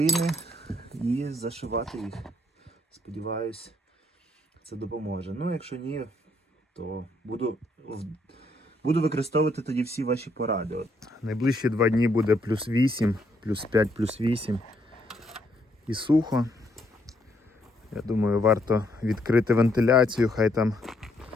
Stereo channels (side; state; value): both; normal; correlation 0.71